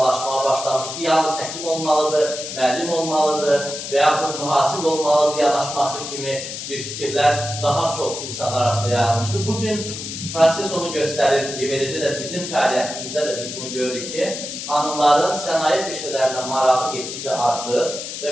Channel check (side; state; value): left; noise; hiss, 7 dB below the sound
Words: başlamışdır. Yalnız həkim olmalıdır, müəllim olmalıdır və yaxud mühasib olmalıdır yanaşması kimi bir fikirlər daha çox insanlar arasında yayılmışdır. Bugün proses onu göstərir ki, eləcə də bizim fəaliyyətimizdə də biz bunu görürük ki, xanımların sənaye peşələrinə marağı getdikcə artır